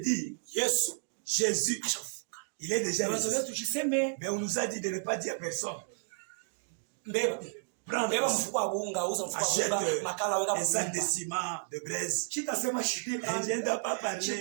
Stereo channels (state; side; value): silent; left; digital silence